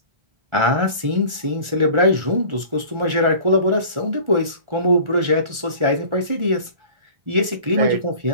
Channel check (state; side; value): late; left; 1.4 ms